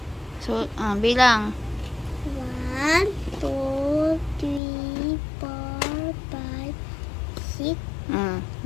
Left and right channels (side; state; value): right; drops out; at 4.6 s